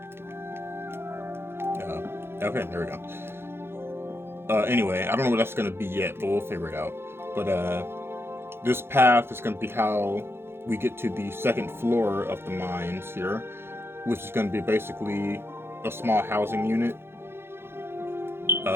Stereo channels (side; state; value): left; late; 0.11 ms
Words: Okay, there we go. Anyway, I don't know what that's gonna be yet, but we'll figure it out. But this path is gonna be how we get to the second floor of the mines here, which is gonna be basically a small housing unit.